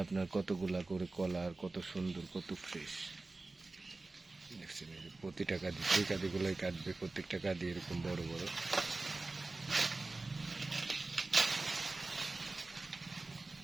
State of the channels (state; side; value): quieter; left; 3.3 dB